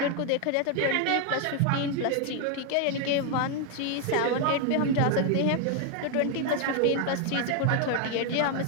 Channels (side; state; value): both; different; correlation 0.00